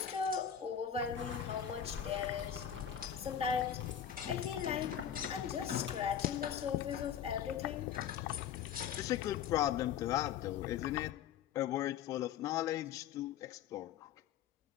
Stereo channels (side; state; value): right; quieter; 9.2 dB